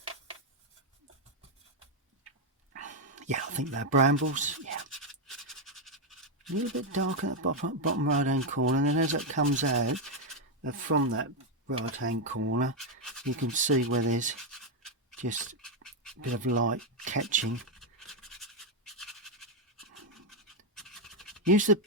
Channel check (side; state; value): both; normal; correlation 0.03